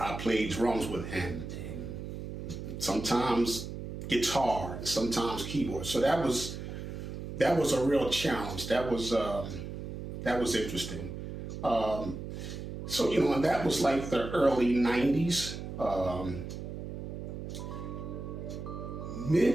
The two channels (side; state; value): right; noise; hum, 7 dB below the sound